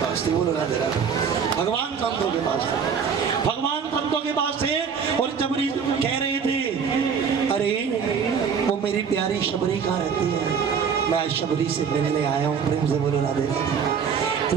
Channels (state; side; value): quieter; left; 6.6 dB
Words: पास थी, बोलो राधे राधे। भगवान संतों के पास थे, भगवान संतों के पास थे और शबरी कह रहे थे, अरे वो मेरी प्यारी शबरी कहाँ रहती है, मैं आज शबरी से मिलने आया हूँ, प्रेम से बोलो राधे राधे।